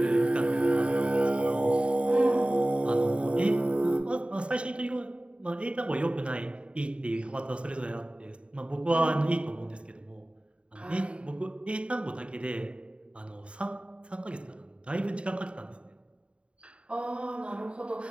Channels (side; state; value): left; late; 0.059 ms